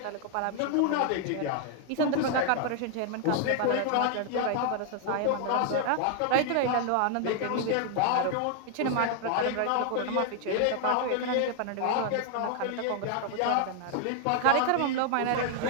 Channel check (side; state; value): both; different; correlation 0.00